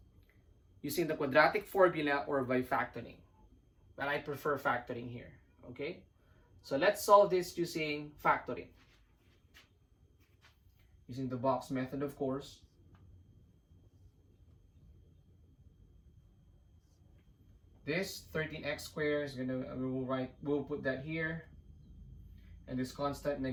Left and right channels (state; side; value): identical; both; correlation 1.00